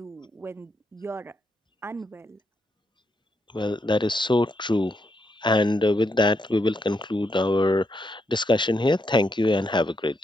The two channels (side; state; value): both; normal; correlation 0.80